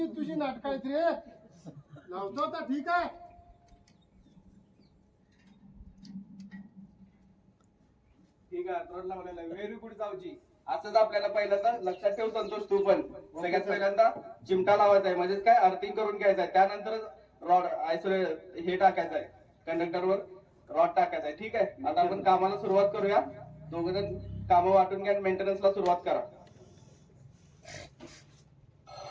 तुझी नाटक आहेत रे. लावतो आता, ठीक आहे. ठीक आहे, अर्थरोड लावलेला आहे. व्हेरी गुड जाऊची. असंच आपल्याला पहिल्यांदा लक्षात ठेव संतोष, तू पण सगळ्यात पहिल्यांदा चिमटा लावायचा आहे, म्हणजेच काय अर्थिंग करून घ्यायचं आहे. त्यानंतर रॉड आयसोलेट हे टाकायचं आहे, कंडक्टरवर रॉड टाकायचा आहे. ठीक आहे, आता आपण कामाला सुरुवात करूया. दोघं जण कामं वाटून घ्या, मेंटेनन्सला सुरुवात करा.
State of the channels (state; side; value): identical; both; correlation 1.00